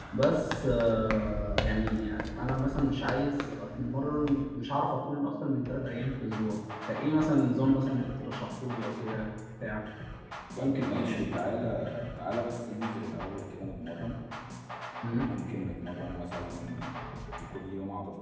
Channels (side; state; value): both; identical; correlation 1.00